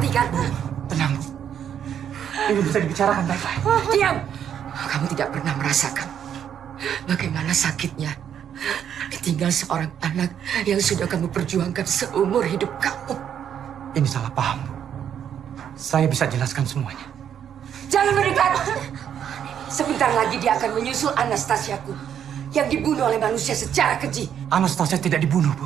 kan? Tenang, Bu. Ini bisa dibicarakan baik-baik. Diam. Kamu tidak pernah merasakan bagaimana sakitnya ditinggal seorang anak yang sudah kamu perjuangkan seumur hidup kamu. Ini salah paham, Bu. Saya bisa jelaskan semuanya. Jangan mendekat. Sebentar lagi dia akan menyusul Anastasiaku yang dibunuh oleh manusia secara keji. Anastasia tidak dibunuh, Bu.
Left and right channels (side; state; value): left; quieter; 9.0 dB